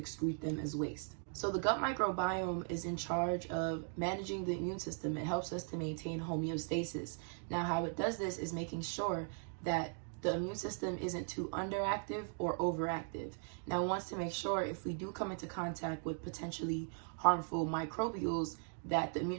them as waste. So the gut microbiome is in charge of managing the immune system. It helps us to maintain homeostasis. Now, how it does this is making sure that the immune system isn't too underactive or overactive. Now, it wants to make sure if we do come into contact with potentially harmful microbials, that the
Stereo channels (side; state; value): left; silent; 52 dB below the other